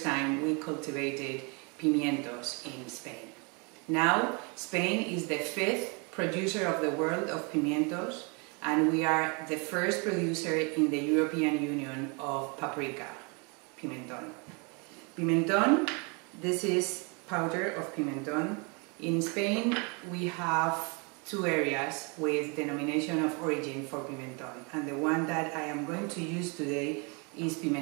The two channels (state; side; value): quieter; left; 32.7 dB